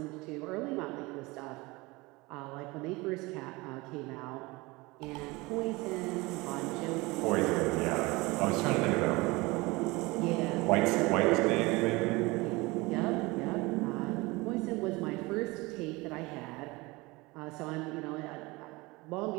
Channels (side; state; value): left; quieter; 23.2 dB